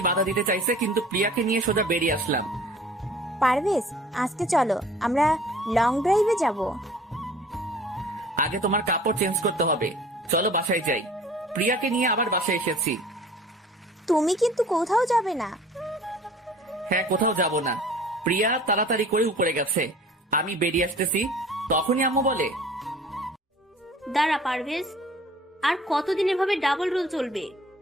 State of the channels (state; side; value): normal; both; correlation 0.48